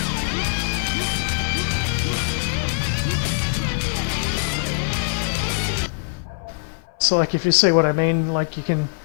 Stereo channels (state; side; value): silent; right; 59 dB below the other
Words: So like if you see what I mean, like you can